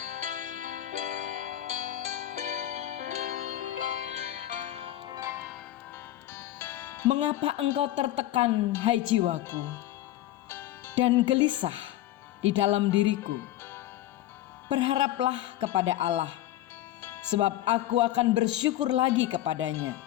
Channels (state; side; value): quieter; right; 14.0 dB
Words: Mengapa engkau tertekan, hai jiwaku, dan gelisah di dalam diriku? Berharaplah kepada Allah, sebab aku akan bersyukur lagi kepadanya,